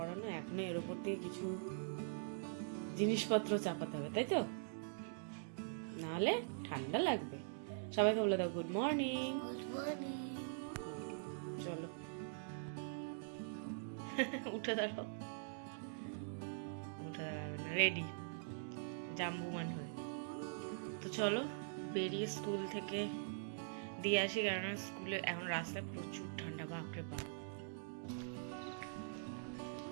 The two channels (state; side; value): silent; left; digital silence